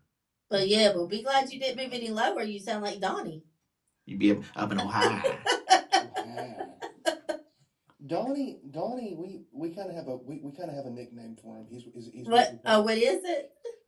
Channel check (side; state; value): both; identical; correlation 1.00